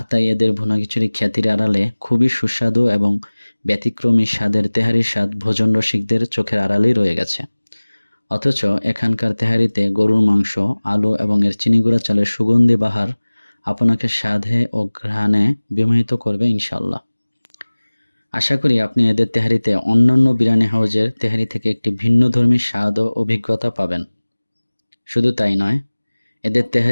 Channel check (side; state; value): both; inverted; correlation -1.00